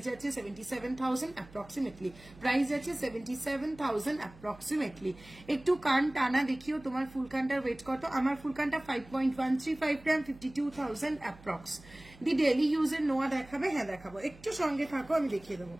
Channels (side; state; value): right; noise; hum, 21 dB below the sound